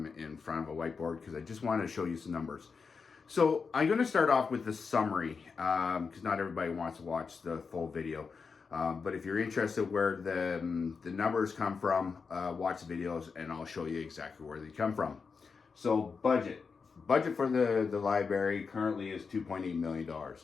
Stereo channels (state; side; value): quieter; right; 5.2 dB